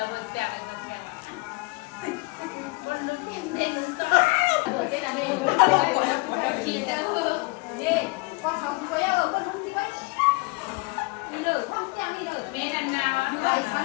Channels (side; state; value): right; quieter; 26.3 dB